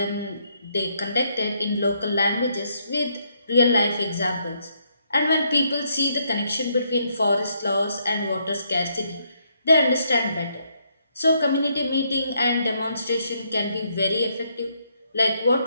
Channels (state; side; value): inverted; both; correlation -0.74